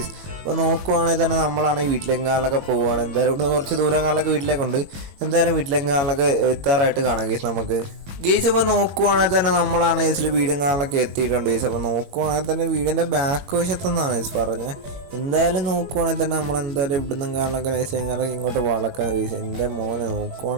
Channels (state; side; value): late; left; 22 ms